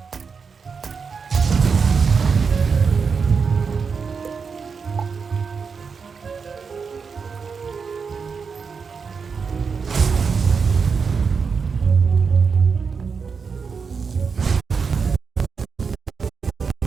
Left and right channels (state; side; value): quieter; left; 5.5 dB